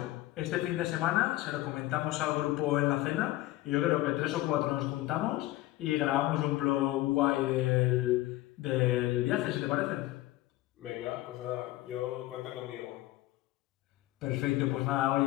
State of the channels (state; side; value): quieter; right; 16.9 dB